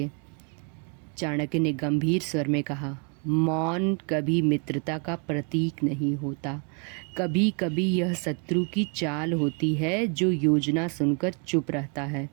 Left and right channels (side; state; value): left; quieter; 37.7 dB